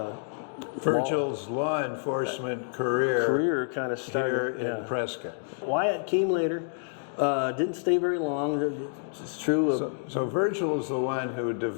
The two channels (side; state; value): right; silent; digital silence